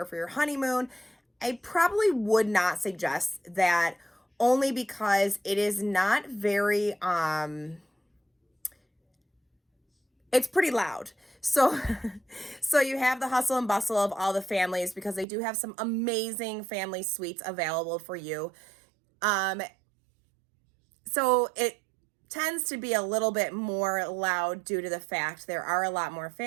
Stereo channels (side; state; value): left; drops out; at 15.2 s